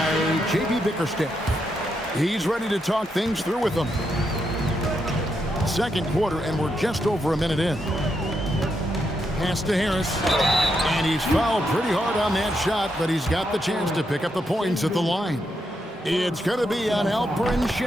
J.B. Bickerstaff. He's ready to talk things through with them. Second quarter, and we're just over a minute in. Pass to Harris. And he's fouled pretty hard on that shot, but he's got the chance to pick up the points at the line. It's going to be on Alperen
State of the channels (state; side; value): normal; both; correlation 0.81